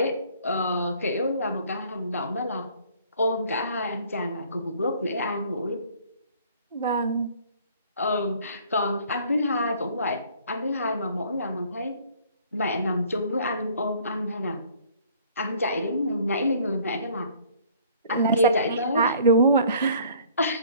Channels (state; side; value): inverted; both; correlation -0.56